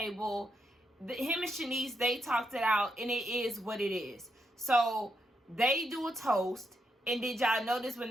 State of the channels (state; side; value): normal; both; correlation 0.81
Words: Him and Shanice, they talked it out, and it is what it is. So they do a toast, and did y'all notice when